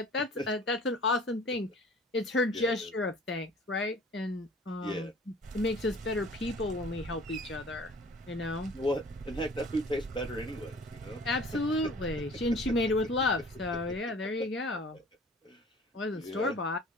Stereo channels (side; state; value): both; normal; correlation 0.48